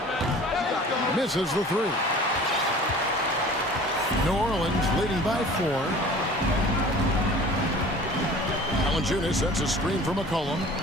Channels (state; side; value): normal; both; correlation 0.44